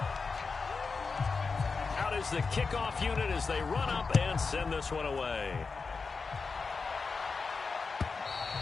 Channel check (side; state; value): right; quieter; 4.6 dB